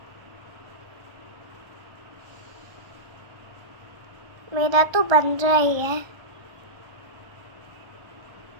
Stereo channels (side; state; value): left; late; 1.3 ms